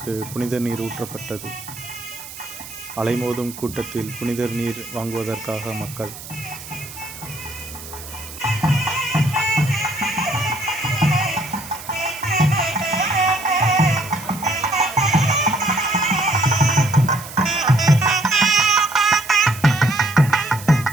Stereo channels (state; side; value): noise; right; hiss, 14 dB below the sound